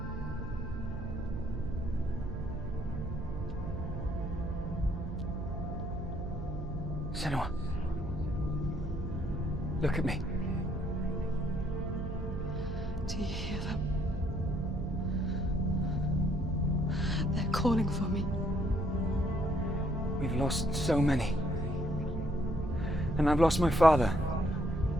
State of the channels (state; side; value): noise; right; hum, 7 dB below the sound